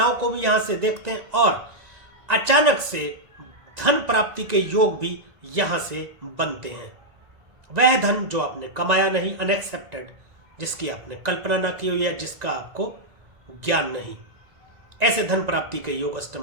को भी यहां से देखते हैं, और अचानक से धन प्राप्ति के योग भी यहां से बनते हैं। वह धन जो आपने कमाया नहीं, अनएक्सेप्टेड, जिसकी आपने कल्पना ना की हुई है, जिसका आपको ज्ञान नहीं, ऐसे धन प्राप्ति के योग अष्टम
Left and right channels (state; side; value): late; left; 1.9 ms